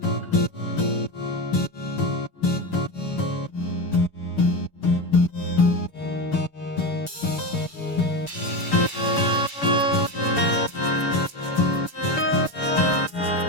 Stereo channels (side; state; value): right; late; 6.9 ms